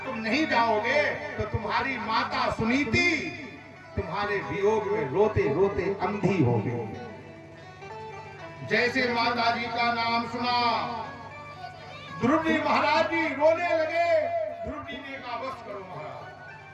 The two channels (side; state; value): both; identical; correlation 1.00